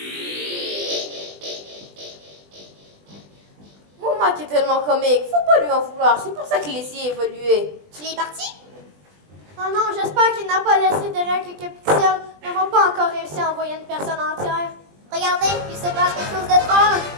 Mon Mike est tellement comique, faut pas lui en vouloir. C'est pour ça qu'il essaie d'évoluer. Tu l'es parti? Oh non, j'espère qu'il n'a pas laissé derrière quelques pixels. Nous n'avons pas encore réussi à envoyer une personne entière. Regardez, il se passe quelque chose d'étrange.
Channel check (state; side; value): late; left; 20 ms